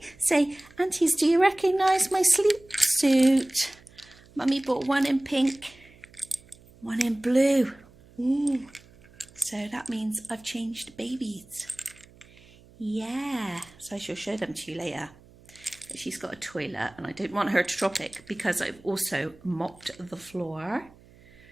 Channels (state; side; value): noise; right; hum, 25 dB below the sound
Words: say, aunties, do you recognise my sleep suit? Mummy bought one in pink, one in blue. Ooh. So that means I've changed babies. Yeah, so I shall show them to you later. But she's got a toilet and I don't want her to drop it because I've also mopped the floor